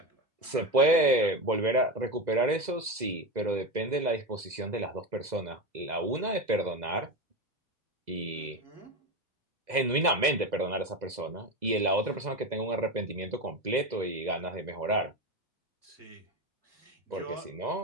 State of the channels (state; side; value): late; left; 2.0 ms